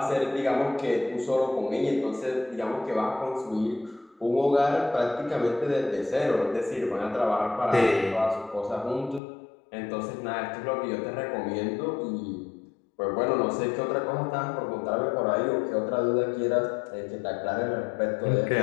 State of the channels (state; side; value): drops out; right; at 9.2 s